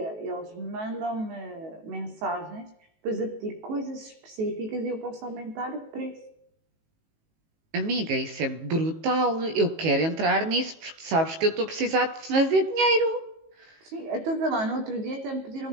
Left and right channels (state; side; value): late; left; 19 ms